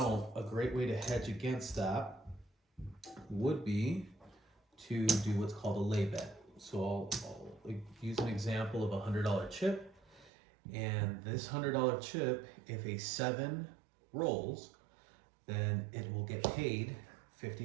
a great way to hedge against that would be to do what's called a lay bet. So I'll use an example of a $100 chip, and this $100 chip, if a 7 rolls, then it will get paid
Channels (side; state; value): left; drops out; at 10.3 s